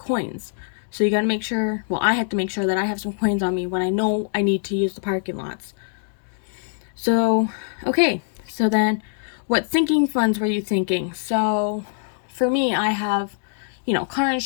So you got to make sure, well, I have to make sure that I have some coins on me when I know I need to use the parking lots. So, okay, so then what sinking funds were you thinking? So for me, I have, you know, car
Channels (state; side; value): silent; right; digital silence